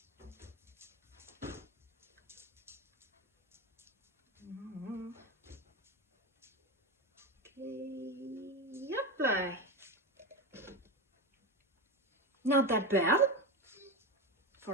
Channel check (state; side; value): normal; both; correlation 0.18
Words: Okay, yep. Not that bad